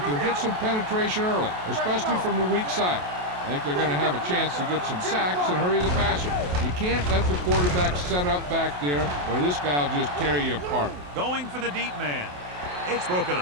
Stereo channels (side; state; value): left; late; 28 ms